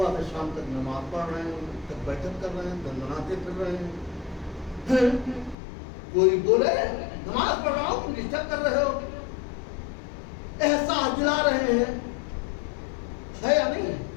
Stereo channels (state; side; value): drops out; right; at 5.6 s